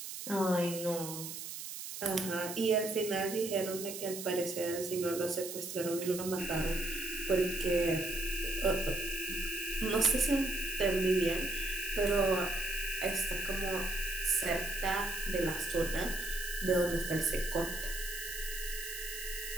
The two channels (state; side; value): noise; right; hiss, 8 dB below the sound